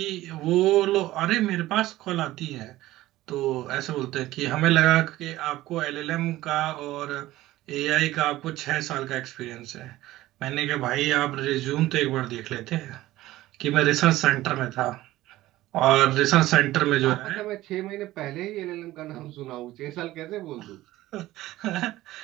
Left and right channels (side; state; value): left; quieter; 16.3 dB